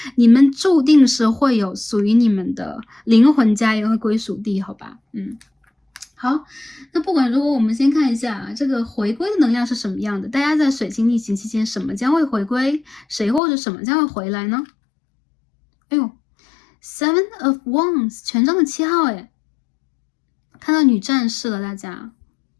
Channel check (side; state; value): right; drops out; at 13.4 s